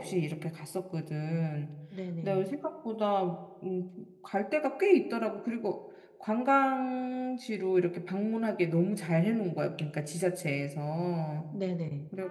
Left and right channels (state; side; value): identical; both; correlation 1.00